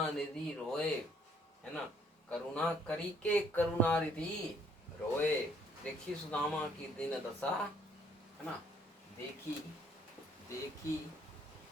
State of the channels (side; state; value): both; normal; correlation 0.64